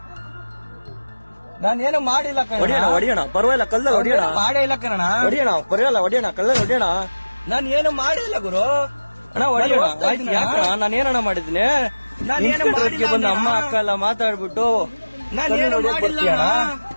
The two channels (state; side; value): inverted; both; correlation -1.00